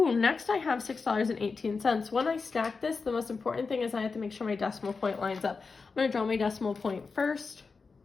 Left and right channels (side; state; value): right; quieter; 4.6 dB